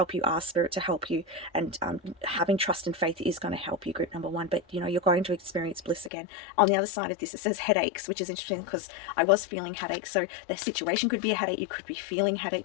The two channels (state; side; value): drops out; right; at 6.1 s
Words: you. Ask Spirit to help you, and having trust and faith is going to help you, group number one. But you know, you're going to experience bliss again. On the other side of this, it says headaches, which is interesting because I was feeling headaches. So the situation could be a headache. You could be feeling